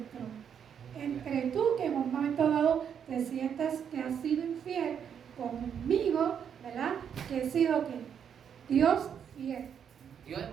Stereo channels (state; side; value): quieter; left; 8.0 dB